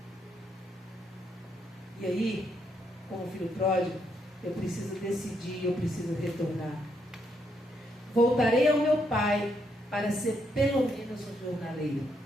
E aí, como filho pródigo, eu preciso decidir, eu preciso retornar. Voltarei ao meu pai para ser pelo menos um jornaleiro.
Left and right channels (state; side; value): normal; both; correlation 0.77